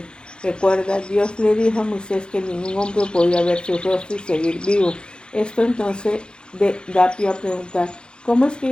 Recuerda, Dios le dijo a Moisés que ningún hombre podía ver su rostro y seguir vivo. Esto entonces da pie a preguntar, ¿cómo es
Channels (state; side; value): late; right; 0.050 ms